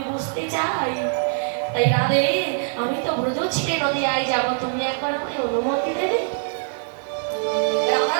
বুঝতে চাই। তাই রাধে, আমি তো ব্রজ ছেড়ে নদিয়ায় যাব, তুমি একবার আমায় অনুমতি দেবে?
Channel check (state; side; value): silent; left; digital silence